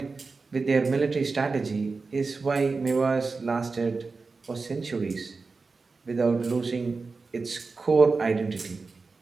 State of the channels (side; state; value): left; quieter; 4.2 dB